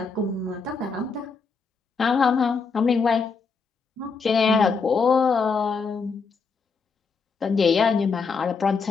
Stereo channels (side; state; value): right; quieter; 4.9 dB